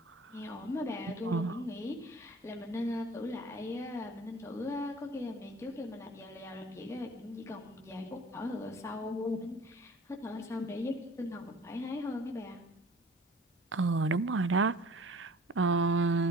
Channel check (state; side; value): normal; both; correlation 0.47